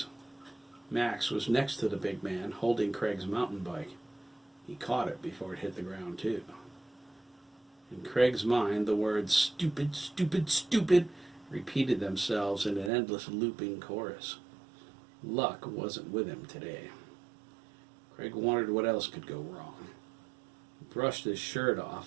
Max was next to the big man, holding Craig's mountain bike. He caught it before it hit the ground, too. In Craig's mind, the words "stupid, stupid, stupid" repeated themselves in an endless looping chorus. Luck wasn't with him today. Craig wondered what else could go wrong. He brushed his shirt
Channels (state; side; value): drops out; left; at 12.9 s